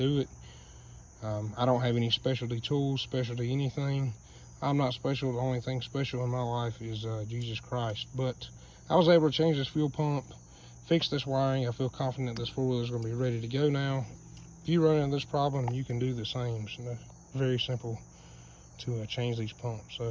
it. I don't have any specialty tools, specialty anything. I'm not special. The only thing special in my life is Jesus Christ. But I was able to change this fuel pump, fix this wiring. I feel confident this four-wheeler is going to be ready to go now. If you run into this problem, you can do the same. So very simple to change these pumps. So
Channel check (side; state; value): both; identical; correlation 1.00